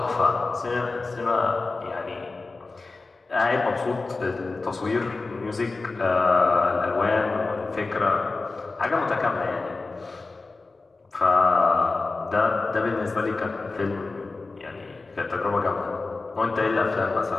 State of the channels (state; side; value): quieter; right; 3.6 dB